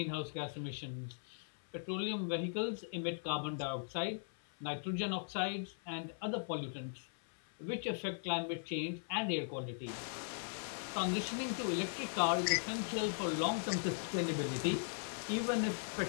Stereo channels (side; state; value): right; silent; 52 dB below the other